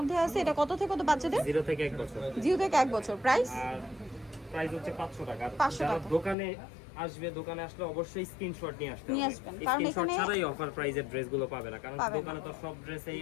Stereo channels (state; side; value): drops out; right; at 6.4 s